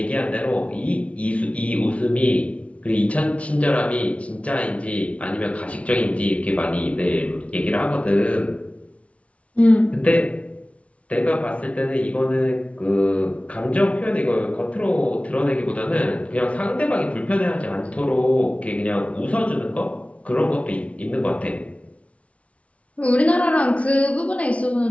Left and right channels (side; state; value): right; late; 0.064 ms